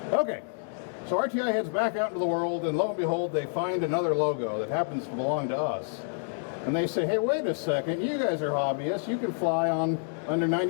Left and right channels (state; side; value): silent; right; digital silence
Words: Okay, so RTI heads back out into the world, and lo and behold, they find another logo that happens to belong to us. And they say, "Hey, wait a second, you guys are hobbyists, you can fly under